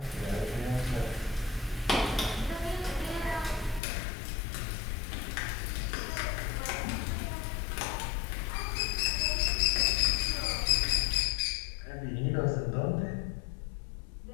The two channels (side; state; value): right; drops out; at 3.8 s